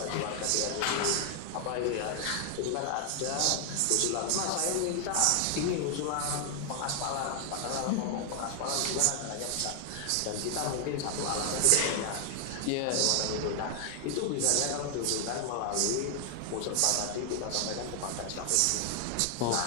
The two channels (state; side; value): different; both; correlation 0.00